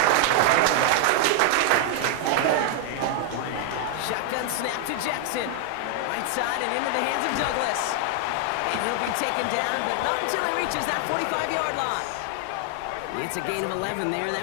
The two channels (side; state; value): both; different; correlation 0.00